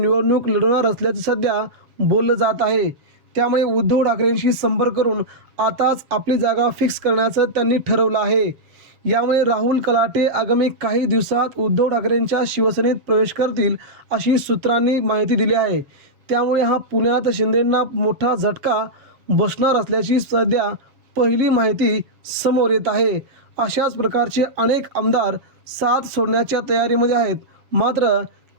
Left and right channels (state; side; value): late; left; 7.4 ms